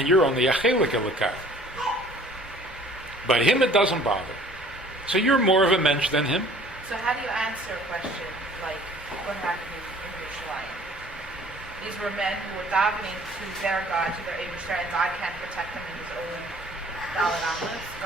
you're only a chelik elokah. But him it doesn't bother. So you're more of a mensch than him. So how do you answer a question like what happened in Yerushalayim? These were men who were davening to their God, to their Eibishter, and God can't protect them in his own Dalet Amos.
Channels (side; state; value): both; normal; correlation 0.52